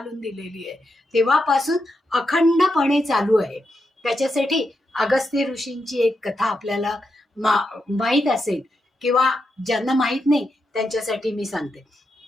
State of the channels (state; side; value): normal; both; correlation 0.85